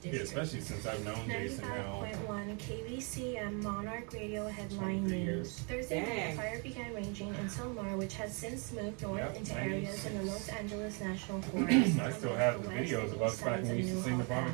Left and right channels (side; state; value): left; quieter; 35.1 dB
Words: Yeah, especially since I've known Jason now. 95.1 KBCM Monarch Radio headline news. Thursday night, a fire began raging in Silmar, which has since moved north into areas in the Los Angeles National Forest. I still have the videos of us back when we used to sing the Broadway